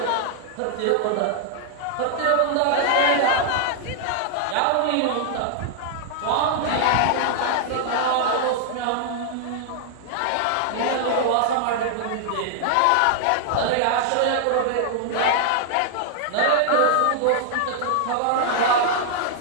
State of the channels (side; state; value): both; different; correlation -0.01